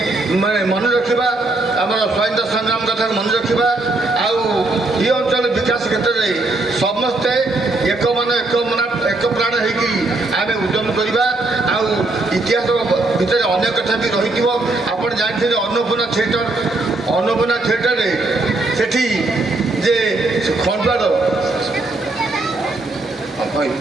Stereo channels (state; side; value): quieter; left; 3.0 dB